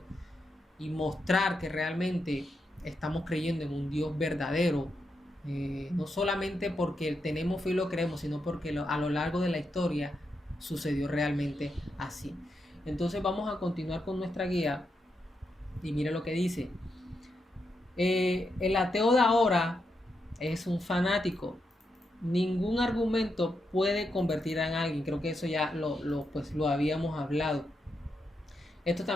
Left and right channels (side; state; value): both; normal; correlation 0.84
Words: y mostrar que realmente estamos creyendo en un Dios verdadero. No solamente porque tenemos fe y lo creemos, sino porque a lo largo de la historia sucedió realmente así. Entonces vamos a continuar con nuestra guía y mire lo que dice. El ateo de ahora es un fanático. Ningún argumento puede convertir a alguien. Creo que eso ya pues, lo habíamos hablado. Esto